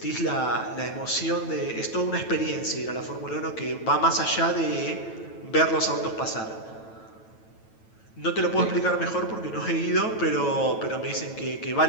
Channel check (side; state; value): right; late; 9.1 ms